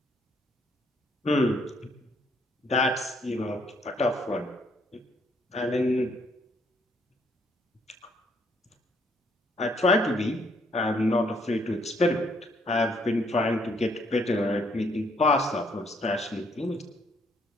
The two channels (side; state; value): both; normal; correlation 0.68